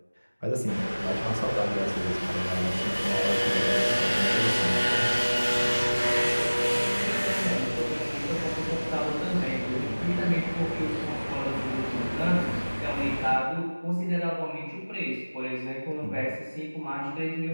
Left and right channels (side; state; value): both; inverted; correlation -1.00